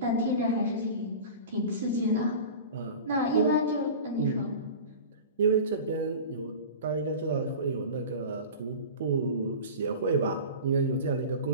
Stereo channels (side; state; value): both; inverted; correlation -0.34